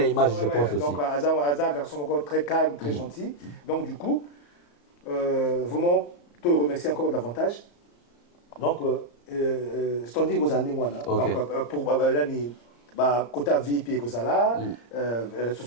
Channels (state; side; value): late; right; 34 ms